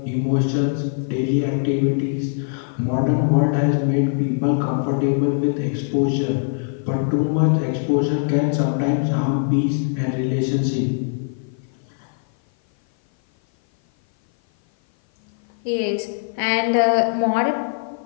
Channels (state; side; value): silent; right; 56 dB below the other